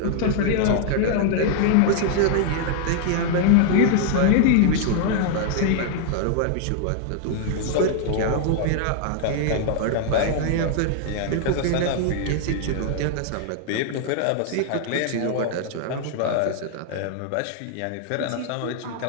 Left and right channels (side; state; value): both; different; correlation -0.01